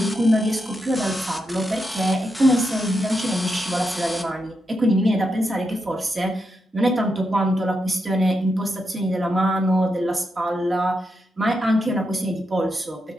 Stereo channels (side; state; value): both; normal; correlation 0.85